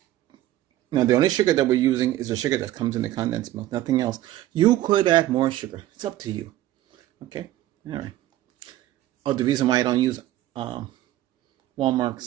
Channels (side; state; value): left; quieter; 14.3 dB